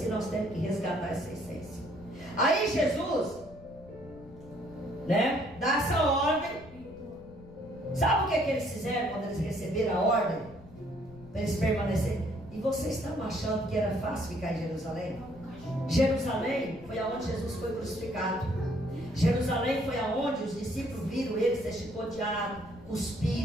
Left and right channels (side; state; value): left; noise; rumble, 20 dB below the sound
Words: que nós temos que resgatar essa essência. Aí Jesus, né, dá essa ordem. Sabe o que eles fizeram quando eles receberam a ordem? Para eles permanecerem. E vocês estão achando que era fácil ficar em Jerusalém? Jerusalém foi aonde Jesus foi crucificado. Jerusalém foi aonde os discípulos viram ele ser chicoteado,